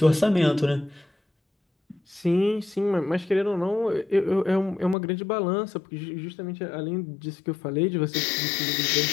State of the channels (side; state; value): right; drops out; at 5.0 s